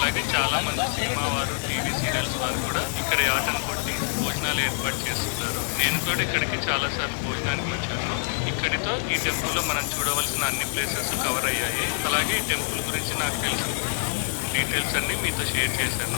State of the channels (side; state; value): right; silent; digital silence